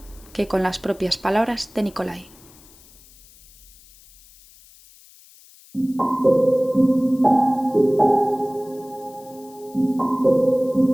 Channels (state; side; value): noise; left; hiss, 25 dB below the sound